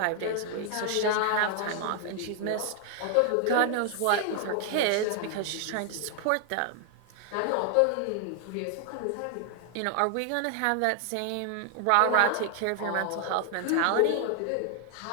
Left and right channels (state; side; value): different; both; correlation 0.00